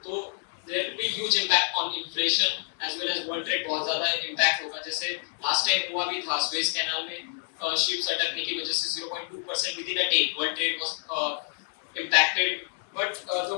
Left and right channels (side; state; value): right; silent; 58 dB below the other